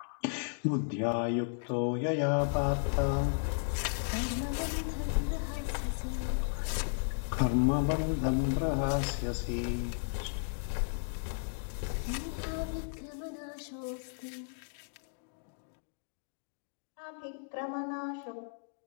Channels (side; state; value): right; silent; digital silence